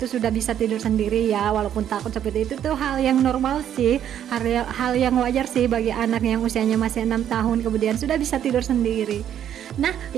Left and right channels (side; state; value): left; quieter; 10.1 dB